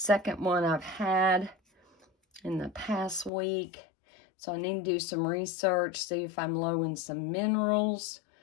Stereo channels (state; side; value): drops out; right; at 3.3 s